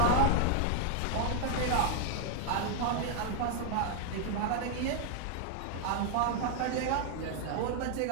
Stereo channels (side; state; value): both; different; correlation 0.00